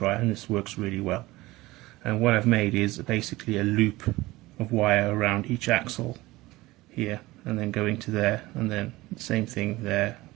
and this works really well. And what I've made is basically a loop of wire around each axle here, and then going to there, and then the same thing there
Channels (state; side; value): quieter; left; 19.4 dB